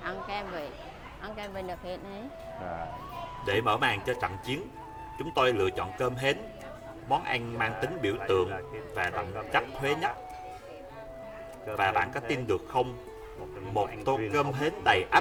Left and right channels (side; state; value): both; identical; correlation 1.00